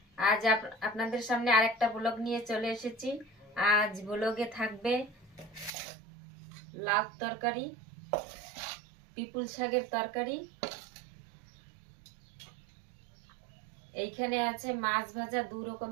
আজ আপনাদের সামনে আরেকটা ব্লগ নিয়ে চলে এসেছি। আজ ব্লগে থাকবে লাউ তরকারি, পিপুল শাকের তরকারি, এইখানে আছে মাছ ভাজা, দু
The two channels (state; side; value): drops out; left; at 5.7 s